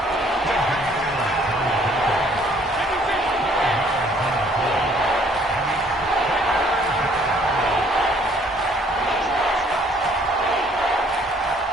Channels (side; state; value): both; normal; correlation 0.61